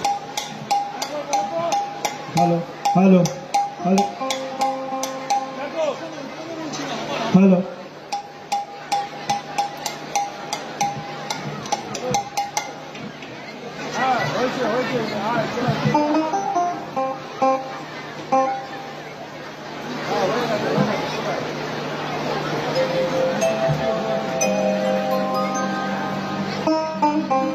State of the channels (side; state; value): both; identical; correlation 1.00